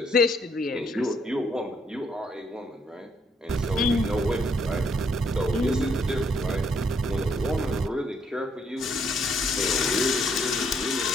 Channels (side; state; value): both; normal; correlation 0.70